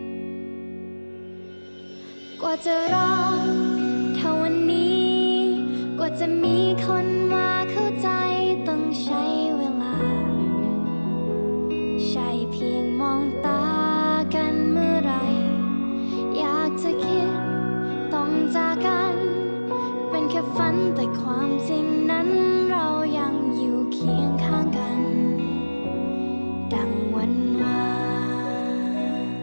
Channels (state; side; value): inverted; both; correlation -1.00